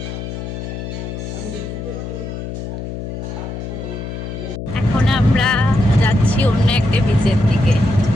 এখন আমরা যাচ্ছি অন্য একটা বিচের দিকে,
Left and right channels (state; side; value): noise; left; hum, 7 dB below the sound